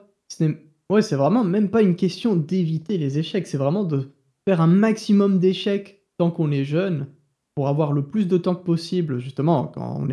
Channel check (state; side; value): identical; both; correlation 1.00